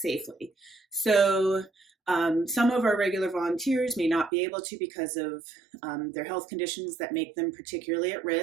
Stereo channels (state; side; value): drops out; left; at 4.3 s